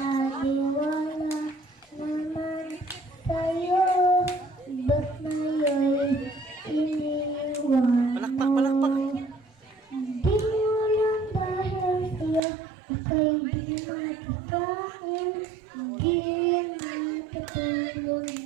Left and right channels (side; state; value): left; drops out; at 12.4 s